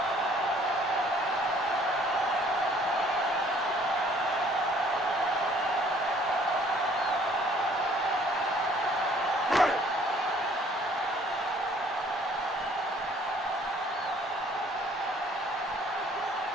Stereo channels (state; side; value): normal; both; correlation 0.58